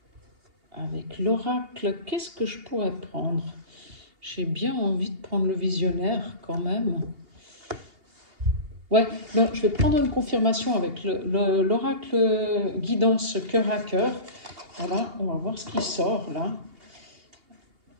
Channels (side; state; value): left; late; 2.8 ms